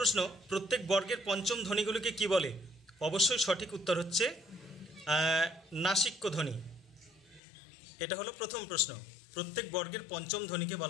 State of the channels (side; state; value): right; drops out; at 7.4 s